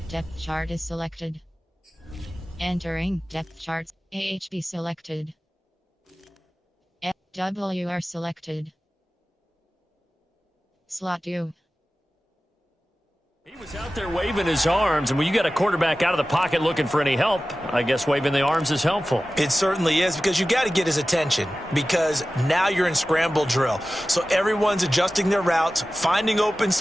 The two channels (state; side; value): normal; both; correlation 0.96